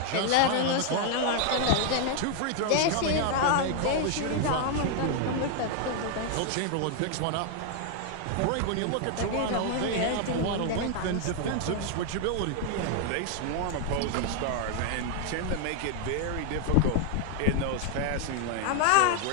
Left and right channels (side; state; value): both; different; correlation 0.00